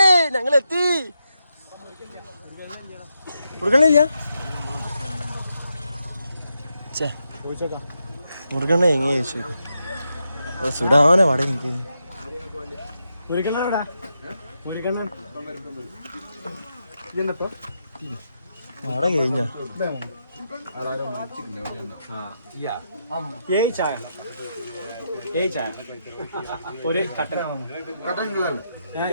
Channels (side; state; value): both; inverted; correlation -0.84